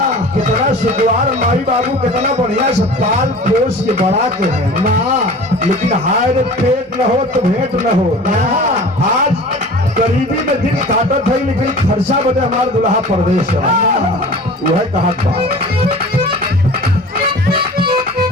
कितना सुखवार माई बाबू कितना बढ़िया से पाल पोस के बड़ा के हैं, लेकिन हाय रे पेट न हो तो भेंट न हो। आज गरीबी में दिन काटत है, लेकिन खर्चा बदे हमारे दुल्हा परदेश है। वह कहा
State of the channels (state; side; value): normal; both; correlation 0.40